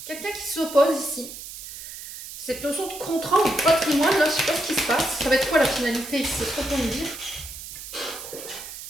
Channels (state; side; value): noise; right; hiss, 12 dB below the sound